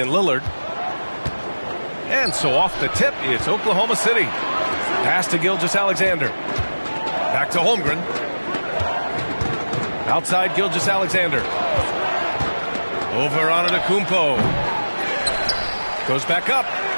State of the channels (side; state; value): both; inverted; correlation -1.00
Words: Lillard. And so off the tip, it's Oklahoma City. Pass to Gilgeous-Alexander. Back to Holmgren. Outside Gilgeous-Alexander. Over on Antetokounmpo. Goes back up.